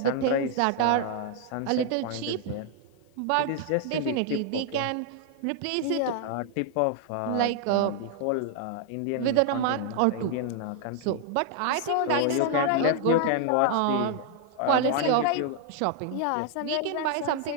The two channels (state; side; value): different; both; correlation 0.00